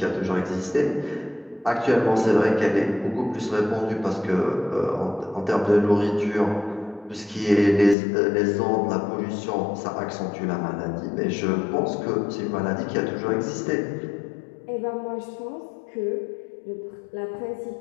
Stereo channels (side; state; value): right; drops out; at 8.0 s